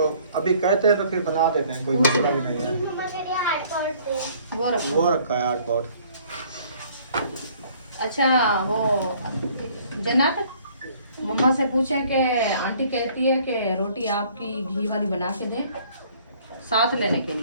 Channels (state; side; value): inverted; both; correlation -0.58